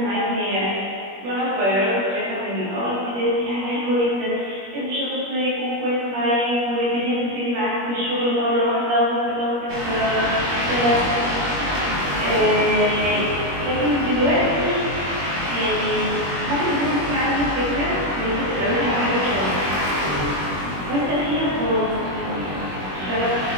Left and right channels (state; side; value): late; left; 21 ms